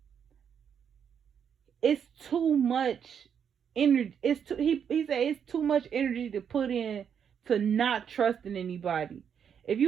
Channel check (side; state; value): left; quieter; 7.8 dB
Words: it's too much energy. He said it's too much energy to put in to not trusting anybody. If